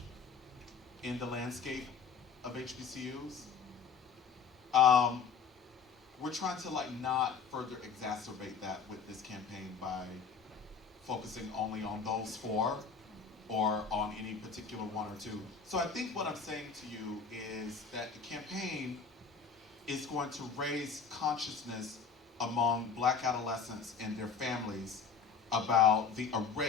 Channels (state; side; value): quieter; right; 5.7 dB